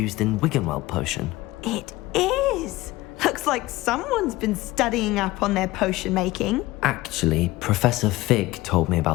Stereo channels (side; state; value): right; quieter; 18.8 dB